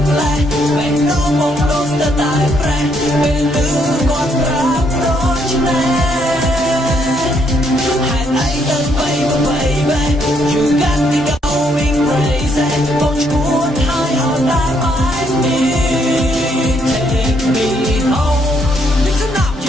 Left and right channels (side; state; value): both; normal; correlation 0.72